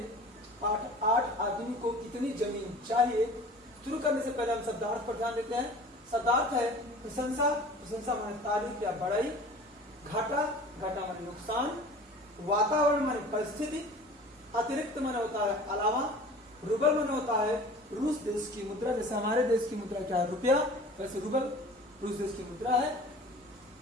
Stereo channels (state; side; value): normal; both; correlation 0.43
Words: पाठ 8 आदमी को कितनी जमीन चाहिए शुरू करने से पहले हम शब्दार्थ पर ध्यान देते हैं। शब्दार्थ है प्रशंसा, प्रशंसा माने तारीफ या बड़ाई, घाटा, घाटा माने नुकसान, वातावरण माने परिस्थिति, अतिरिक्त माने होता है अलावा, रूबल माने होता है रूस देश की मुद्रा। जैसे हमारे देश की मुद्रा क्या है? रुपया, वैसे रूबल रूस देश की मुद्रा है।